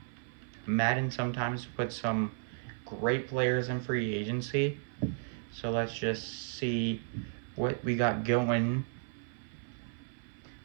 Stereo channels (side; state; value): left; silent; 55 dB below the other